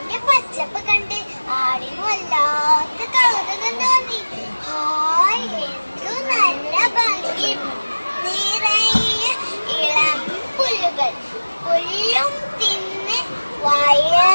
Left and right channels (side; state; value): both; inverted; correlation -1.00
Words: പച്ചപ്പ് കണ്ട് ആടിന് വല്ലാത്ത കൗതുകം തോന്നി. ഹായ്, എന്തു നല്ല ഭംഗി! നിറയെ ഇളം പുല്ലുകൾ. പുല്ലും തിന്ന്